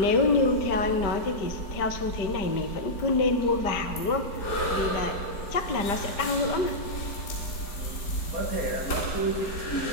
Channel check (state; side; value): late; right; 5.1 ms